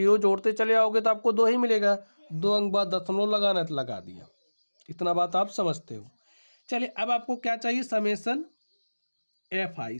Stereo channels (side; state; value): both; inverted; correlation -1.00